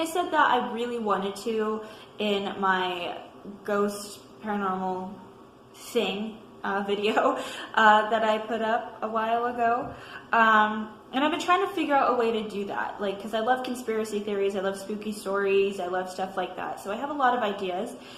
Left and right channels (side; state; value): both; identical; correlation 1.00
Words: said that I really wanted to in my ghost paranormal thing video that I put up a while ago. And I've been trying to figure out a way to do that, like, because I love conspiracy theories, I love spooky stories, I love stuff like that. So I have a lot of ideas.